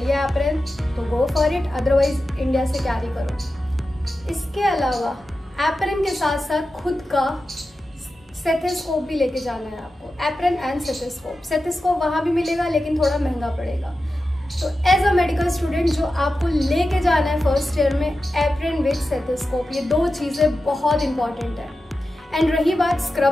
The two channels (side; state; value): both; normal; correlation 0.92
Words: एप्रन तो go for it, otherwise India से कैरी करो। इसके अलावा एप्रन के साथ साथ खुद का स्टेथोस्कोप भी लेके जाना है आपको, एप्रन एंड स्टेथोस्कोप। स्टेथोस्कोप वहाँ भी मिलेगा लेकिन थोड़ा महंगा पड़ेगा। तो एज अ मेडिकल स्टूडेंट जो आपको लेके जाना है फर्स्ट ईयर में, एप्रन विद स्टेथोस्कोप, ये 2 चीज़ें बहुत इंपॉर्टेंट है। एंड रही बात